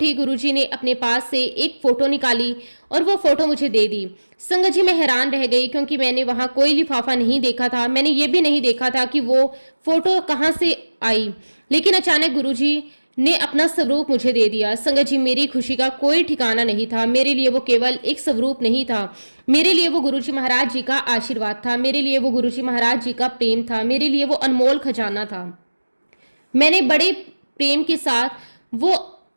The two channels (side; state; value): both; inverted; correlation -1.00